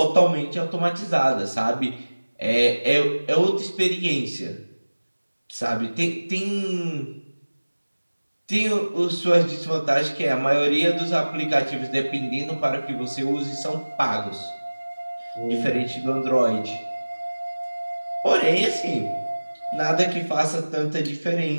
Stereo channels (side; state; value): both; inverted; correlation -1.00